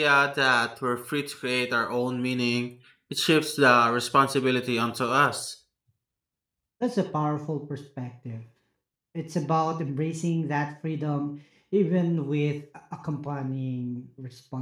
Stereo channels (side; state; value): both; identical; correlation 1.00